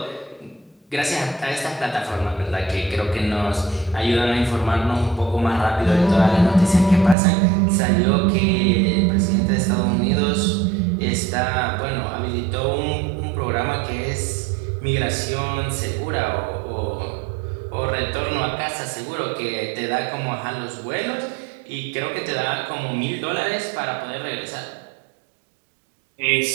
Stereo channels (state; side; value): drops out; left; at 7.2 s